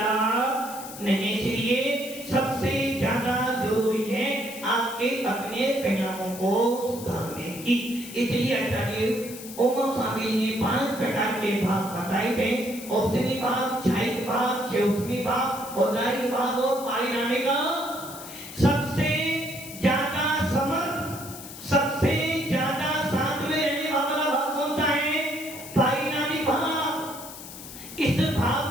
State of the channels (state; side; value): noise; left; hiss, 13 dB below the sound